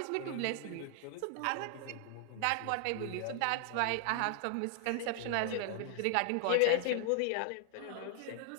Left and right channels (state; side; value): different; both; correlation 0.00